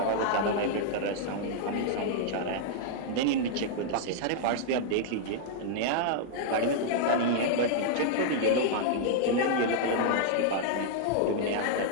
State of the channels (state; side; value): different; both; correlation -0.01